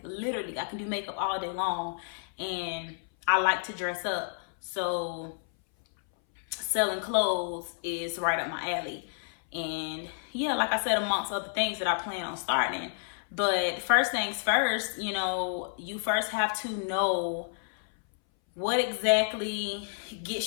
literally, I can do makeup all day long, and I like to dress up, so selling clothes is right up my alley. And yeah, like I said, amongst other things that I plan on starting. But first things first, you first have to know What exactly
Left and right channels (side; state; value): right; silent; 58 dB below the other